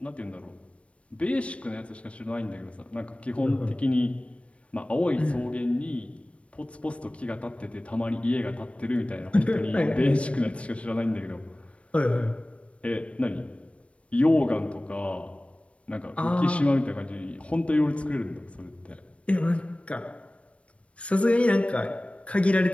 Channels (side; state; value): right; late; 0.062 ms